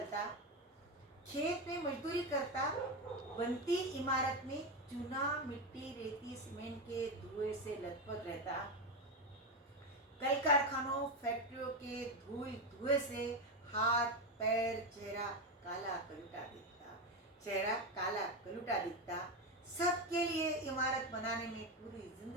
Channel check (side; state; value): both; normal; correlation 0.12